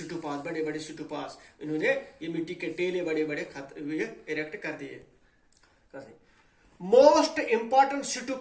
بڑے بڑے سٹوپاز انہوں نے یہ مٹی کے ٹیلے بڑے بڑے اریکٹ کر دیے. Most important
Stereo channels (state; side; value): identical; both; correlation 1.00